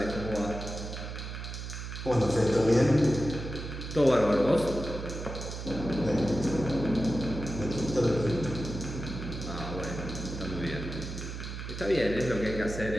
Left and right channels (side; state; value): right; noise; hum, 7 dB below the sound